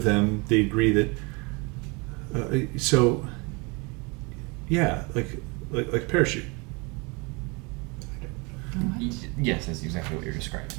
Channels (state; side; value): quieter; left; 29.0 dB